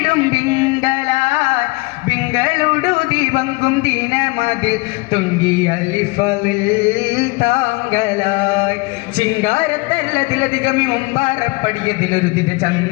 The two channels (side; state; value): right; quieter; 25.9 dB